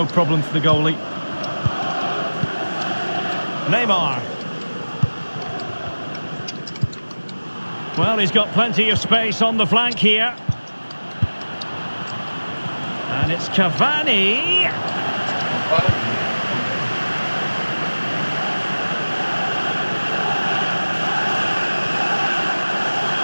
problem for the goalie. Neymar. Well, he's got plenty of space on the flank here. And it's Cavani.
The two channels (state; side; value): inverted; both; correlation -1.00